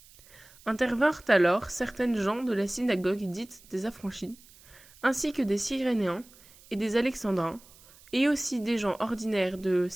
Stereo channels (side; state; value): right; noise; hiss, 25 dB below the sound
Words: Intervinrent alors certaines gens de la synagogue dite des Affranchis, ainsi que des Cyrénéens et des Alexandrins, et aussi des gens ordinaires de